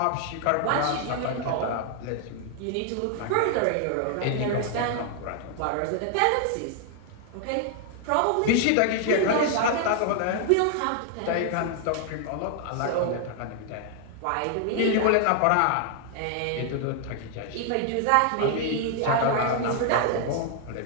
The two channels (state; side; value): different; both; correlation 0.00